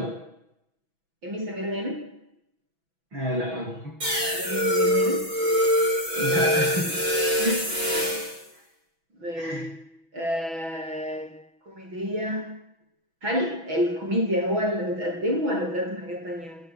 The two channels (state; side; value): late; left; 6.1 ms